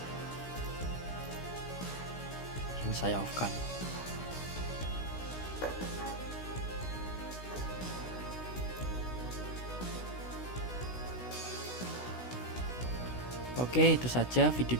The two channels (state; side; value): late; right; 16 ms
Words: Saya off-kan. Oke, itu saja video